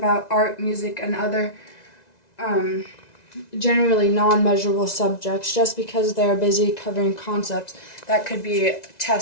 art, music, and other generally non-measurable subjects just because they are busy covering concepts that could be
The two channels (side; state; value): right; late; 1.9 ms